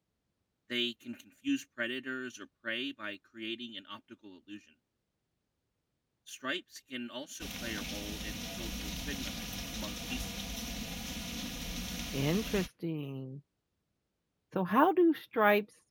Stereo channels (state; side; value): identical; both; correlation 1.00